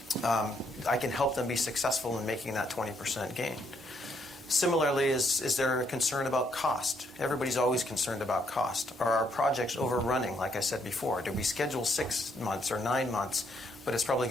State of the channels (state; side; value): normal; both; correlation 0.73